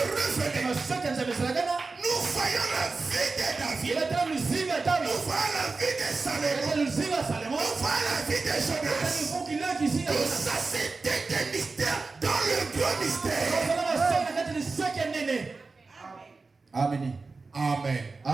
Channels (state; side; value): quieter; left; 4.0 dB